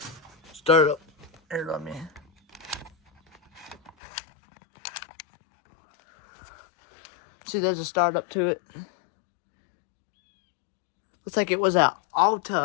Startup. Here, let me. See, there's a startup to it. Looks like it was an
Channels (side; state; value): right; drops out; at 3.9 s